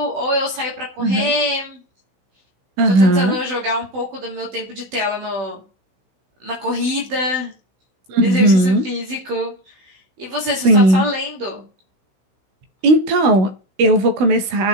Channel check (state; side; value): late; left; 16 ms